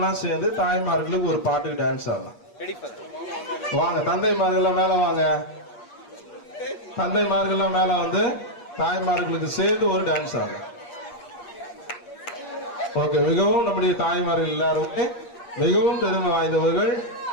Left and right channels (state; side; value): late; right; 8.5 ms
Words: சேர்ந்து தாய்மார்களுக்கு ஒரு பாட்டுக்கு டான்ஸ் ஆடலாம். வாங்க தந்தைமார்கள் மேல வாங்க. தந்தைமார்கள்லாம் மேல வந்து தாய்மார்களுக்கு சேர்ந்து ஒரு டான்ஸ் ஆகும். ஓகே, மிகவும் நம்முடைய தாய்மார்கள் எல்லாருமே மிகவும் பெருமை வாய்ந்தவர்கள்.